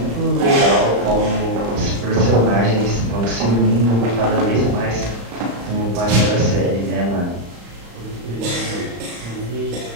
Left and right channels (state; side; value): late; left; 35 ms